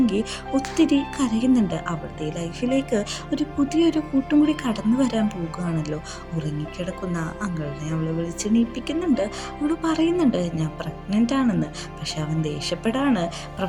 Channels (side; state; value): both; identical; correlation 1.00